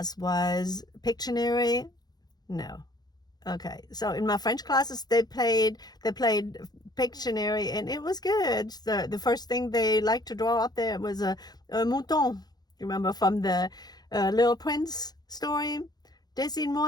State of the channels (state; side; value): late; right; 0.19 ms